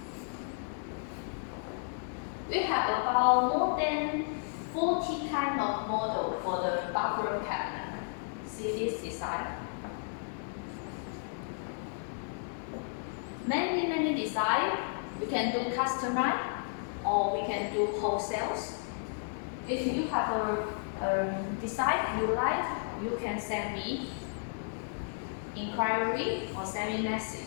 We have about more than 40 kind of model for the bathroom cabinet. See this design? Many design. We can do customize or we can do wholesales. If you have a design you like, you can send me inquiry or send me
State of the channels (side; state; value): right; silent; 56 dB below the other